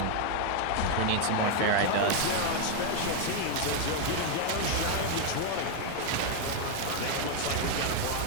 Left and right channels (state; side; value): different; both; correlation 0.01